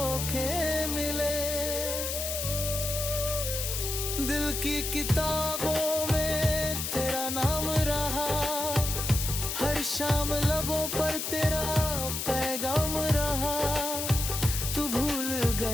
मिले। दिल की किताबों में तेरा नाम रहा, हर शाम लबों पर तेरा पैगाम रहा। तू भूल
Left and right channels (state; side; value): noise; left; hiss, 3 dB below the sound